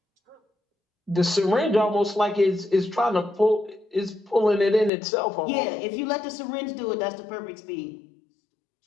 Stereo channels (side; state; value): right; drops out; at 4.9 s